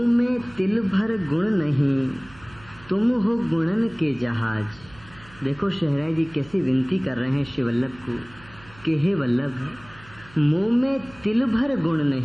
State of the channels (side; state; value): right; noise; hum, 23 dB below the sound